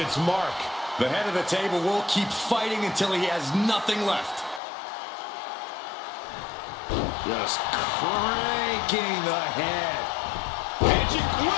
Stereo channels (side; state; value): right; drops out; at 4.6 s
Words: its mark. The head of the table will keep fighting until he has nothing left. Just cranking the head. Magic